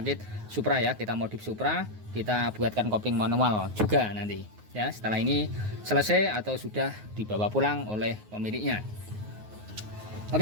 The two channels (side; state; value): left; late; 9.5 ms